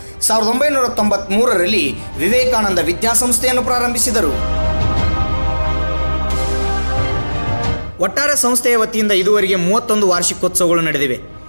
1993ರಲ್ಲಿ ವಿವೇಕಾನಂದ ವಿದ್ಯಾಸಂಸ್ಥೆಯನ್ನು ಪ್ರಾರಂಭಿಸಿದರು. ಒಟ್ಟಾರೆ ಸಂಸ್ಥೆಯ ವತಿಯಿಂದ ಇದುವರೆಗೆ 31 ವಾರ್ಷಿಕೋತ್ಸವಗಳು ನಡೆದಿವೆ.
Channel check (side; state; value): both; inverted; correlation -1.00